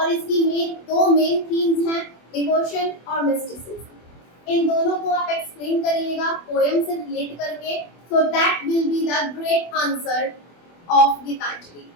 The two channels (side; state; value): right; late; 24 ms